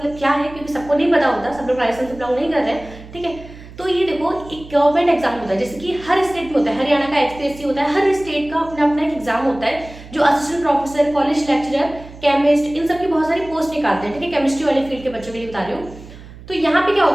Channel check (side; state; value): right; noise; hum, 17 dB below the sound